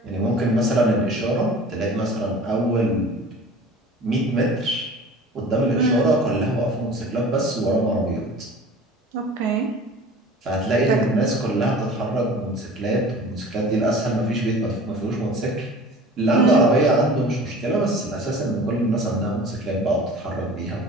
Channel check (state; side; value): normal; both; correlation 0.42